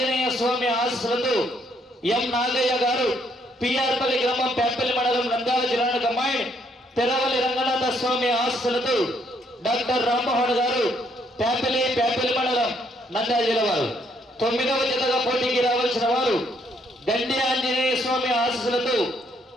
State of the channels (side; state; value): both; normal; correlation 0.70